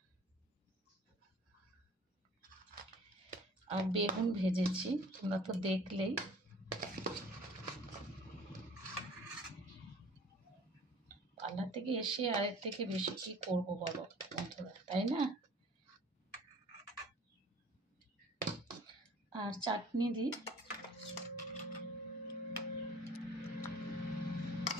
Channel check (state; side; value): normal; both; correlation 0.49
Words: আর বেগুন ভেজেছি, তোমরা তো দেখলেই। পার্লার থেকে এসে আরের থেকে বেশি কি করবো বলো বন্ধুরা, তাই না? আর চাটনি দিই।